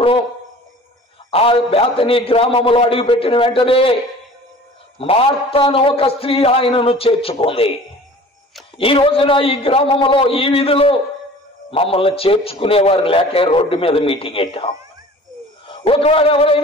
ఆ బేతని గ్రామములో అడుగుపెట్టిన వెంటనే మార్తాను ఒక స్త్రీ ఆయనను చేర్చుకుంది. ఈ రోజున ఈ గ్రామంలో, ఈ వీధిలో మమ్మల్ని చేర్చుకునేవారు లేక రోడ్డు మీద మీటింగ్ పెట్టాం. ఒకవేళ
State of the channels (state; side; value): normal; both; correlation 0.45